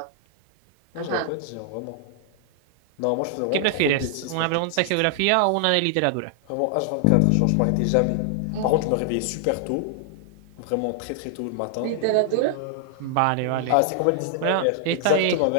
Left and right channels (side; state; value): both; different; correlation 0.00